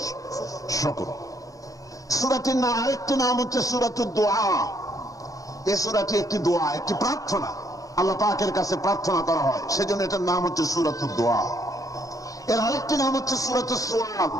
শুকর। সূরাটির নাম আরেকটি নাম হচ্ছে সূরাতুদ দুআ। এই সূরাটি একটি দোয়া, একটি প্রার্থনা, আল্লাহ পাকের কাছে প্রার্থনা করা হয়, সেজন্য এটার নাম হচ্ছে সূরাতুদ দুআ। এর আরেকটি নাম হচ্ছে সূরাতুস সুআল,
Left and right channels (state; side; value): late; right; 0.17 ms